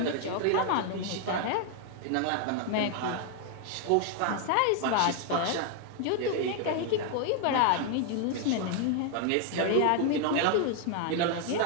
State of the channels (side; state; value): both; different; correlation 0.00